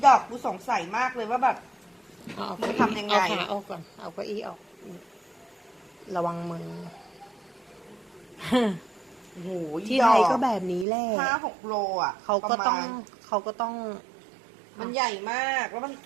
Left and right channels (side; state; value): left; drops out; at 10.9 s